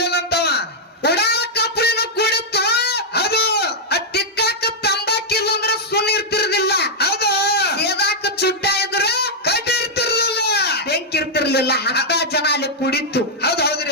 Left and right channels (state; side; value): normal; both; correlation -0.05